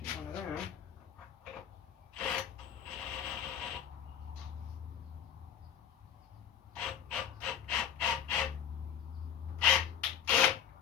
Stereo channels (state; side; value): quieter; right; 9.0 dB